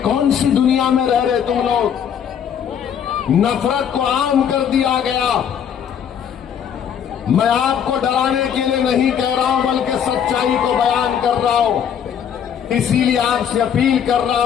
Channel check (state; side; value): quieter; right; 8.4 dB